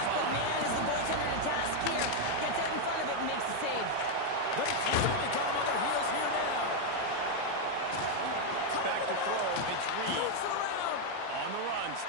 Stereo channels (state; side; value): different; both; correlation 0.01